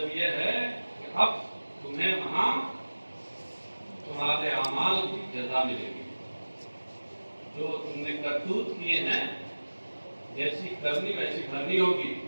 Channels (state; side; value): inverted; both; correlation -1.00